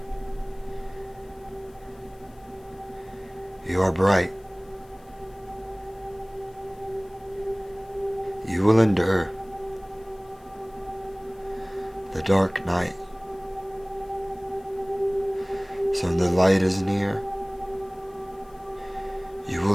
You are bright. You will endure the dark night. So when the light is near, you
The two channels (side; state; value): left; noise; hiss, 30 dB below the sound